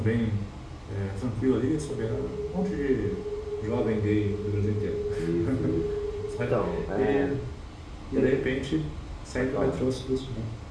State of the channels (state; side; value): identical; both; correlation 1.00